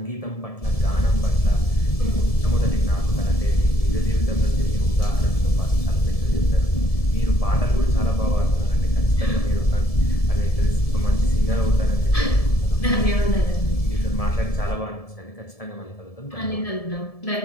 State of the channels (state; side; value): late; right; 1.7 ms